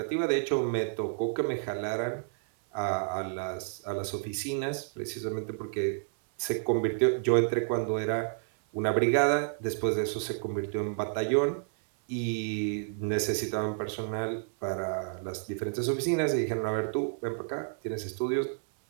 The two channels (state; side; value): silent; left; 58 dB below the other